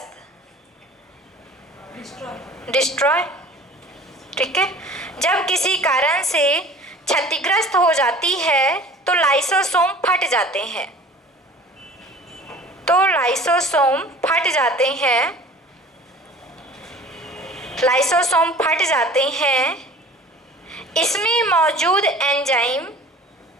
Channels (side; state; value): both; normal; correlation 0.45